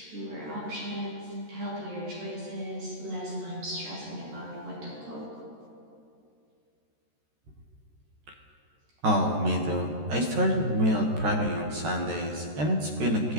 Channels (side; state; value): left; late; 13 ms